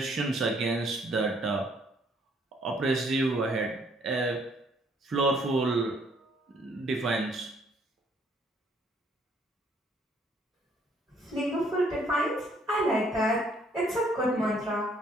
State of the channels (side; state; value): both; normal; correlation 0.65